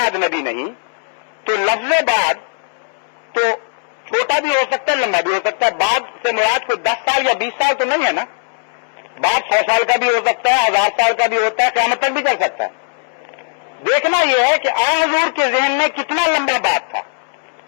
نبی نہیں تو لفظ بعد تو چھوٹا بھی ہو سکتا ہے لمبا بھی ہو سکتا ہے. بعد سے مراد کوئی 10 سال یا 20 سال تو نہیں ہے نا. بعد 100 سال کا بھی ہو سکتا ہے 1000 سال کا بھی ہوتا ہے قیامت تک بھی چل سکتا ہے. دیکھنا یہ ہے کہ حضور کے ذہن میں کتنا لمبا بات تھا.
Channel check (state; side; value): silent; right; 68 dB below the other